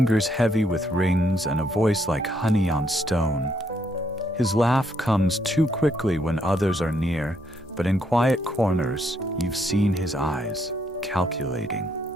heavy with rings and a voice like honey on stone. His laugh comes too quickly when others are near, but in quiet corners, you've seen his eyes, calculating.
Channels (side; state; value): both; normal; correlation 0.73